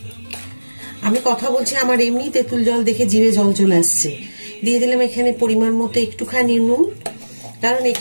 আমি কথা বলছি, আমার এমনি তেঁতুল জল দেখে জিভে জল চলে আসছে। দিয়ে দিলাম এখানে পরিমাণ মতো একটুখানি নুন, কারণ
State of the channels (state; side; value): inverted; both; correlation -1.00